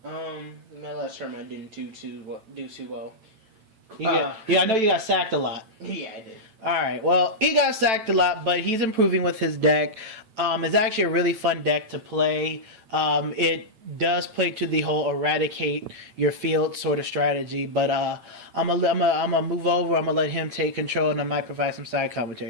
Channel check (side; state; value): left; late; 9.1 ms